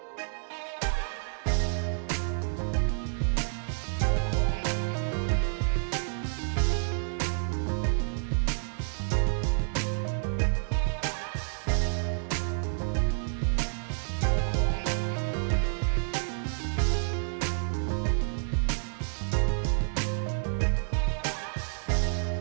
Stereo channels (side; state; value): left; silent; digital silence